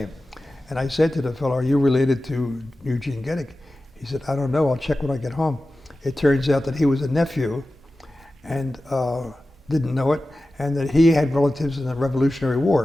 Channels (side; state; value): both; normal; correlation 0.94